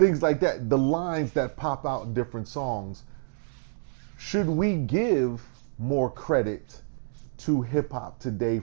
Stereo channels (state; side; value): silent; left; digital silence